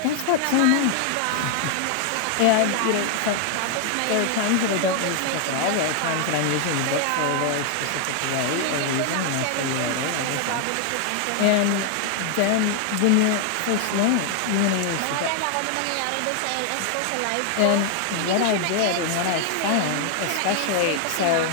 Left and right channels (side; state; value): both; different; correlation 0.00